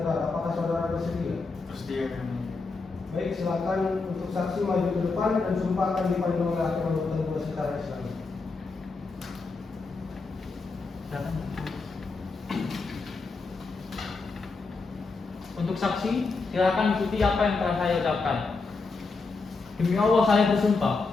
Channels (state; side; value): quieter; right; 4.1 dB